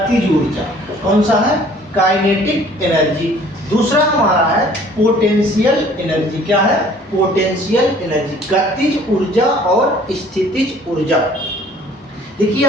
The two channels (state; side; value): normal; both; correlation 0.54